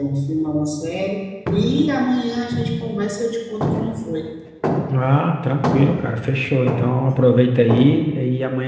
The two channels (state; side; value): identical; both; correlation 1.00